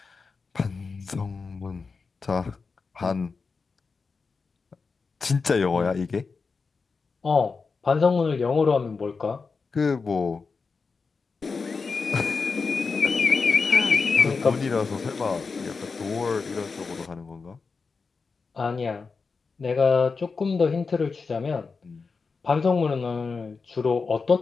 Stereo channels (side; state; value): right; quieter; 4.7 dB